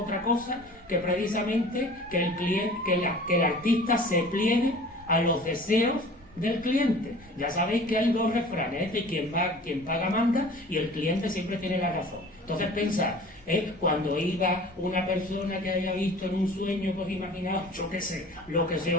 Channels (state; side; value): normal; both; correlation 0.44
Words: cosa que precisamente que el artista se pliegue a los deseos del cliente. Ya sabéis que hay dos refranes, quien paga manda, y el cliente siempre tiene la razón. Entonces pensad, cuando iba una persona que haya visto en un sueño, pues imaginaos, yo qué sé, lo que se